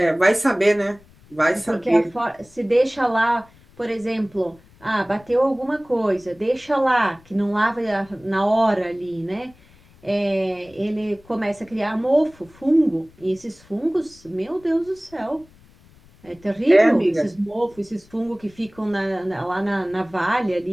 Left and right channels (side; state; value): left; noise; rumble, 27 dB below the sound